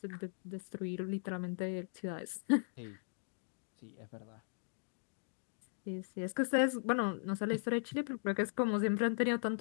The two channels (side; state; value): right; silent; digital silence